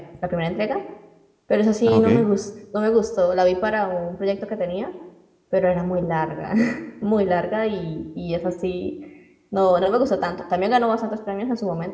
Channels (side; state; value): both; identical; correlation 1.00